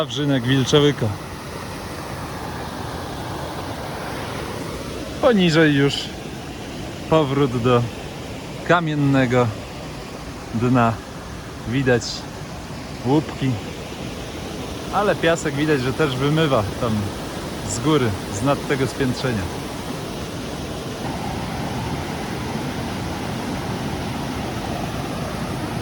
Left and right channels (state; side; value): identical; both; correlation 1.00